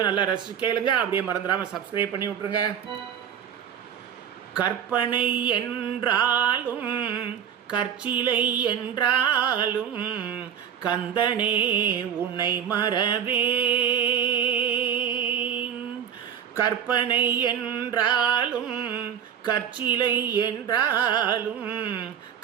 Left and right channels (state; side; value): quieter; left; 8.8 dB